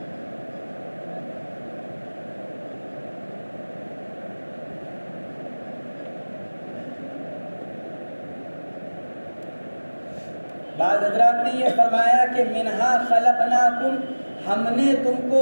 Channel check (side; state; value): both; inverted; correlation -1.00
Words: بعض حضرات نے یہ فرمایا کہ منہا خلقناکم، ہم نے تم